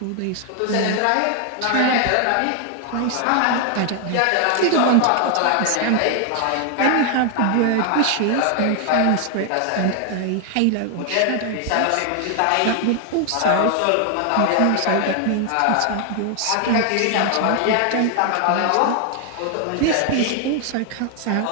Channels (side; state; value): both; different; correlation 0.00